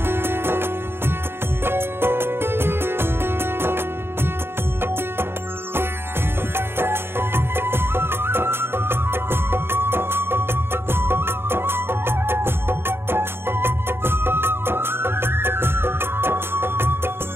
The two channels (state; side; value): late; left; 0.11 ms